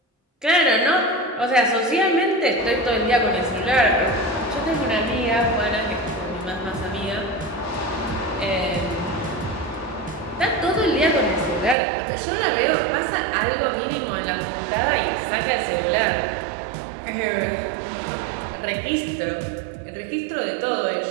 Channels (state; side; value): drops out; left; at 11.8 s